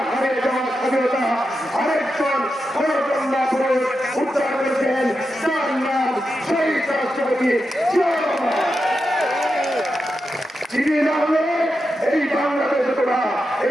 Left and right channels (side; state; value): both; normal; correlation 0.88